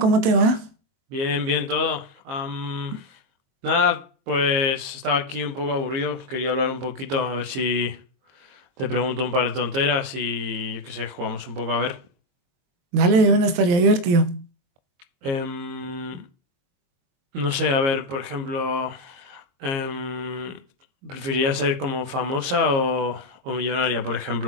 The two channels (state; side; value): late; left; 22 ms